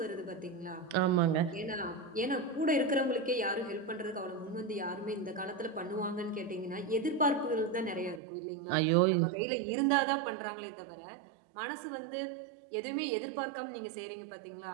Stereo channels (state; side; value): drops out; left; at 8.2 s